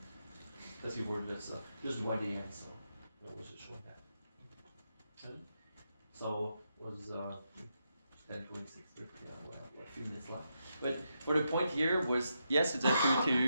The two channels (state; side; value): inverted; both; correlation -0.83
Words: Because you've already just one day in, so that was just showing that. Okay. So was 10:26, we'll have a few minutes left. But for the point here was, yes, it's a